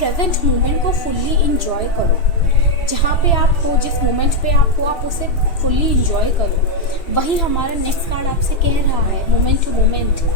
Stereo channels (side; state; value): right; late; 3.0 ms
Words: मोमेंट को फुल्ली इंजॉय करो। जहाँ पे आप हो, जिस मोमेंट पे आप हो, आप उसे फुल्ली इंजॉय करो। वही हमारा नेक्स्ट कार्ड आपसे कह रहा है, मोमेंट टू मोमेंट।